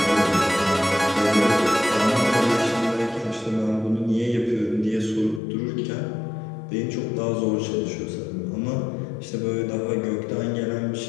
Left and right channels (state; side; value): drops out; right; at 5.4 s